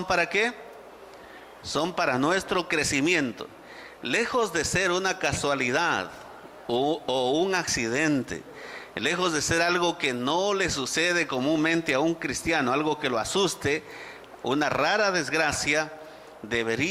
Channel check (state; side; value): identical; both; correlation 1.00